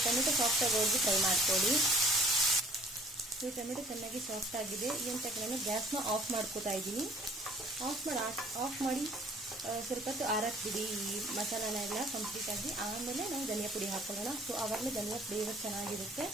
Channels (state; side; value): normal; both; correlation 0.53